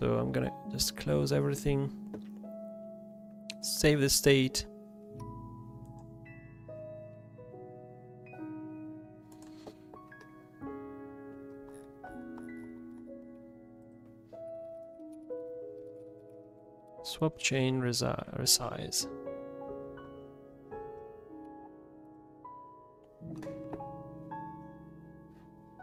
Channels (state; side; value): identical; both; correlation 1.00